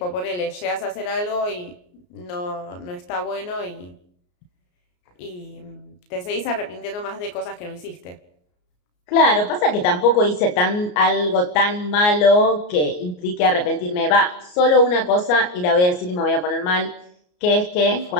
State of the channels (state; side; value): late; right; 34 ms